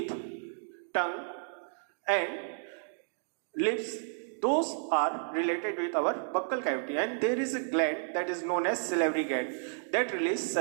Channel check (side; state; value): left; silent; digital silence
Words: tongue and lips. Those are related with our buccal cavity, and there is a gland that is known as salivary gland that releases